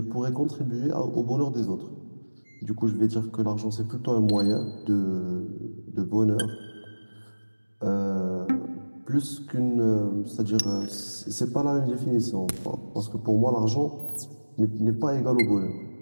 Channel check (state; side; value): inverted; both; correlation -1.00